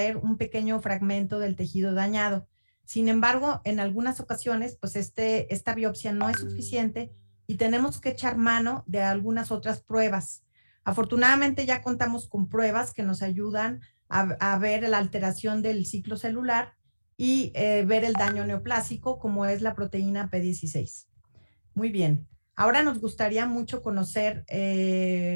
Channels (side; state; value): both; inverted; correlation -1.00